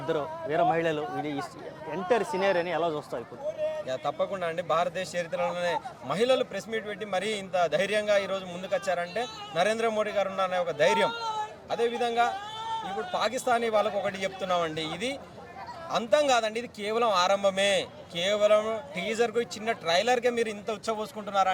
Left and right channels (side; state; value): both; identical; correlation 1.00